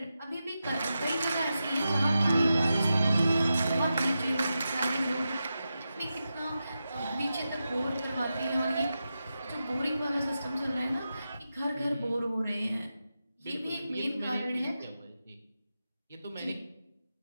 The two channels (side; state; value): both; inverted; correlation -0.90